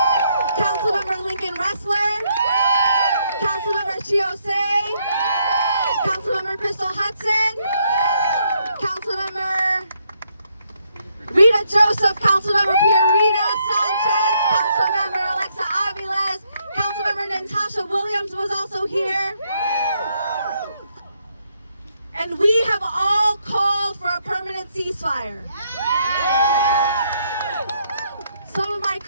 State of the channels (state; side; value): inverted; both; correlation -0.74